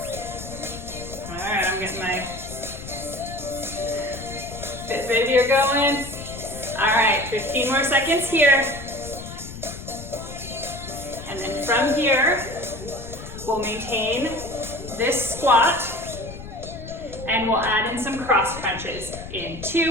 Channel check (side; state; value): left; noise; rumble, 12 dB below the sound